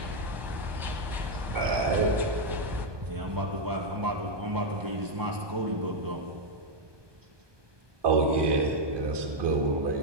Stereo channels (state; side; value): late; left; 1.2 ms